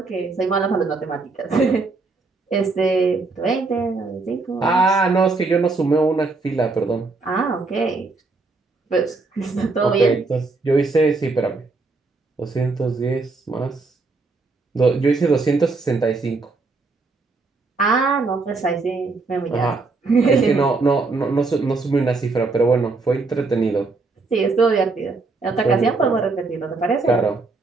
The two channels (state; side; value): quieter; left; 3.8 dB